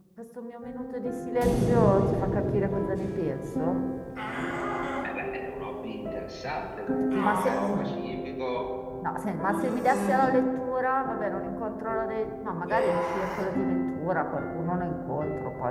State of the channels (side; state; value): both; identical; correlation 1.00